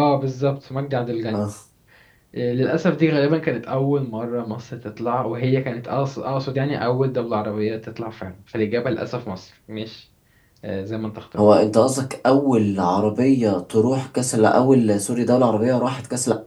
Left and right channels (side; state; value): both; identical; correlation 1.00